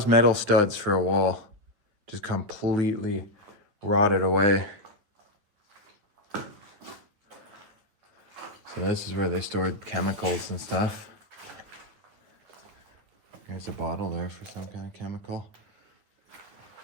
metal studs for a wall. Just completely rotted away. So this is where they stored chemicals and stuff. There's a bottle there for some kind of chemical.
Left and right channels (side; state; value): left; late; 9.8 ms